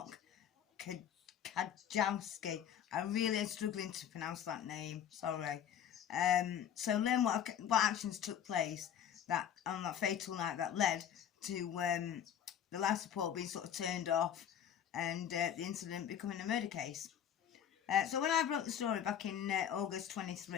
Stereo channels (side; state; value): right; quieter; 9.4 dB